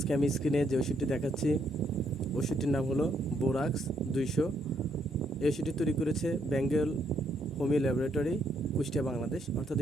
আমি স্ক্রিনে যে ওষুধটি দেখাচ্ছি, ওষুধটির নাম হলো বোরাক্স 200। এই ওষুধটি তৈরি করেছে বেঙ্গল হোমিও ল্যাবরেটরি, কুষ্টিয়া, বাংলাদেশ। অর্থাৎ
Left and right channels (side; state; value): both; normal; correlation 0.73